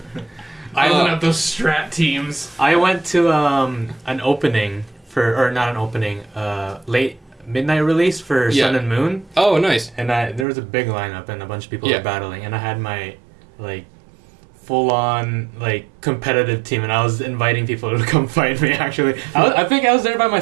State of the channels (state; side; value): drops out; left; at 10.5 s